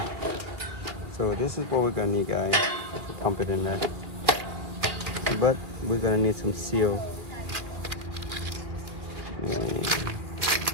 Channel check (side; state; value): left; late; 2.4 ms